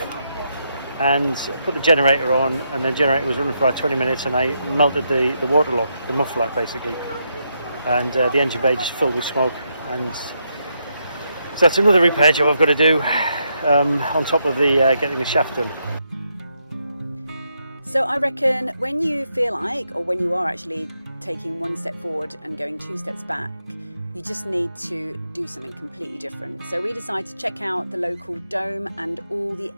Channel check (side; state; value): both; inverted; correlation -0.80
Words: and put the generator on, and the generator was running for about 20 minutes, and I melted the water lock, the muffler basically. and the engine bay just filled with smoke. And so that's another repair job I've got to do on top of the getting the shaft done. So I reckon when you feel like, or when you are actually taking one step forward and going 2 steps back, you just need to do something completely different. So we decided to check out the local dome and all the